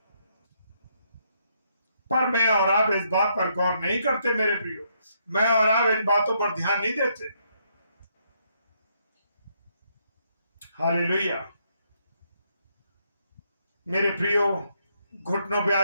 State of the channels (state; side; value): inverted; both; correlation -0.74